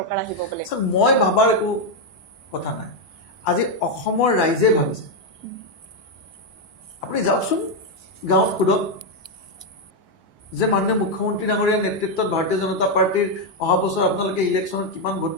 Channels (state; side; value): late; left; 1.2 ms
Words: আহিব বুলি মই ভাবাৰ একো কথা নাই আজি অসমৰ ৰাইজে ভাবিছে আপুনি যাওকচোন গাঁৱত সোধক যে মাননীয় মুখ্যমন্ত্ৰী ডাঙৰীয়াৰ নেতৃত্বত ভাৰতীয় জনতা পাৰ্টিৰ অহা বছৰ আপোনালোকে ইলেকশ্যনত কিমান ভোট